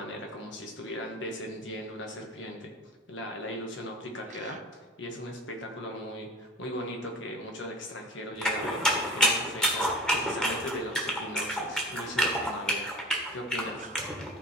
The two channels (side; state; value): both; normal; correlation 0.37